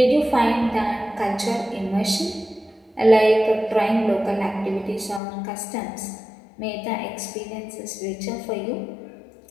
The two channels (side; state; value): right; drops out; at 5.2 s